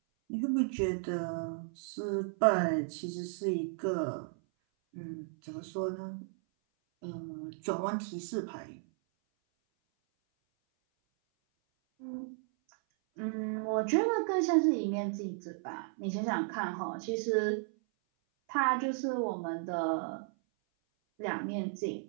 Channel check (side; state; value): left; silent; 55 dB below the other